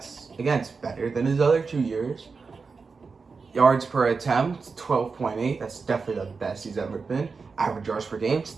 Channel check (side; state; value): left; quieter; 4.7 dB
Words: better than his other 2 years. Yards per attempt, 12.8. That's definitely the best he's ever been. Average yards per game,